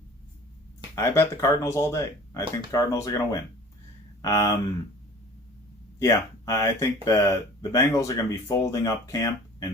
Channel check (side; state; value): both; normal; correlation 0.45